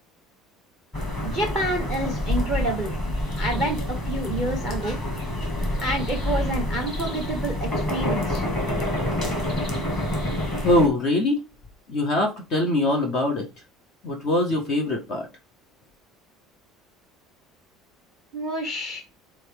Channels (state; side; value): normal; both; correlation 0.45